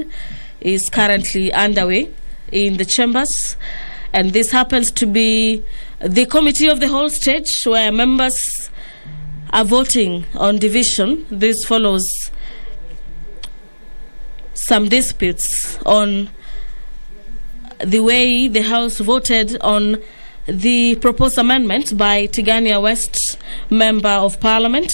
is currently underway in the chambers, and this happens to be the committee of the whole stage where members are voting on division. This follows some disputes on the way the House voted on the proposed amendment by Tigania West Member of Parliament,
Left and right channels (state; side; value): inverted; both; correlation -1.00